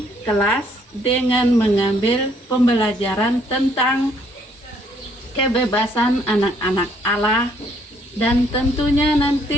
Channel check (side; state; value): both; normal; correlation 0.66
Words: kelas dengan mengambil pembelajaran tentang kebebasan anak-anak Allah, dan tentunya